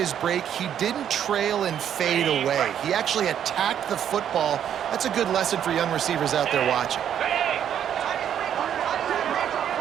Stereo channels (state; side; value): quieter; left; 9.5 dB